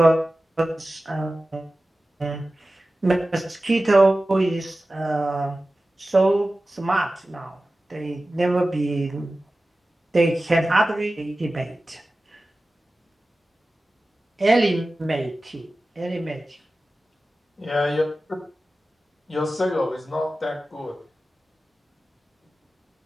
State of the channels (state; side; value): normal; both; correlation 0.95